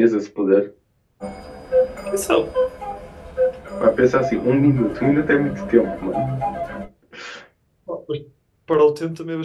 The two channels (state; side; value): identical; both; correlation 1.00